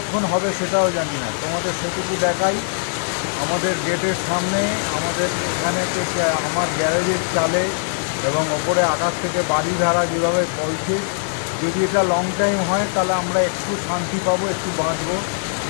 হবে সেটাও জানি না। তোমাদের সেটুকু দেখাই, আমাদের গেটের সামনে, আমাদের এখানে আমার গ্যারেজের চালে এবং ওপরে আকাশ থেকে বাড়ি ধারা যেভাবে বলছে, যদি এটা লং টাইম হয় তাহলে আমরা একটু শান্তি পাবো, একটু বাঁচবো,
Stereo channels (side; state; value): right; silent; digital silence